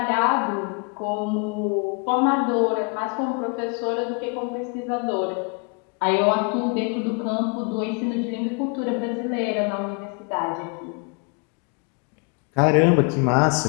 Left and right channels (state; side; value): quieter; right; 35.4 dB